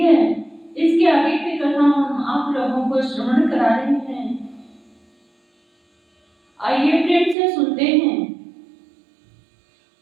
इसके आगे की कथा हम आप लोगों को श्रवण करा रहे हैं। आइए प्रेम से सुनते हैं।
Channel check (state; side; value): drops out; left; at 7.4 s